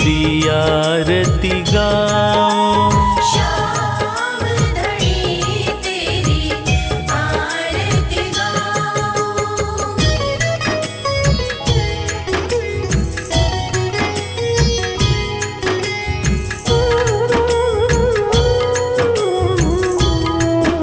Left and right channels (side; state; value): both; identical; correlation 1.00